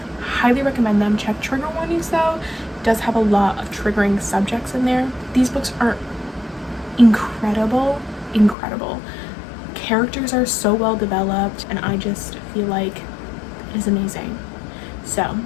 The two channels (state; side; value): drops out; right; at 8.6 s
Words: Highly recommend them. Check trigger warnings though. It does have a lot of triggering subjects in there. These books are incredible. Incredible. Characters are so well developed, and I just feel like it is amazing. So